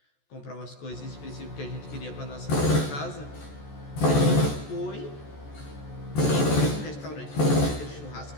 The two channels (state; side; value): late; right; 14 ms